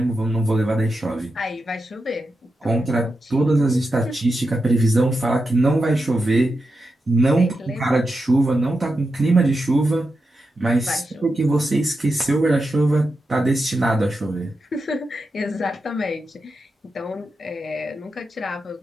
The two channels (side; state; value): both; normal; correlation 0.88